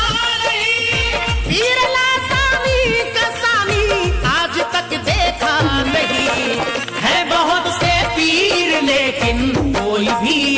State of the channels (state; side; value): identical; both; correlation 1.00